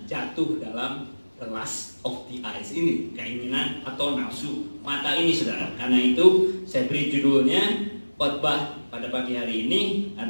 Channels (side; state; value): both; inverted; correlation -1.00